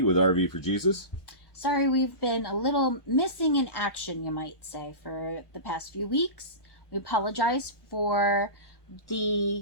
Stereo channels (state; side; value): late; right; 1.1 ms